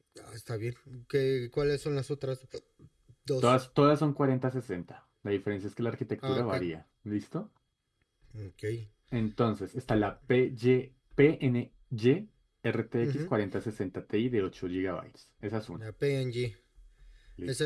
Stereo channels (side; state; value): both; identical; correlation 1.00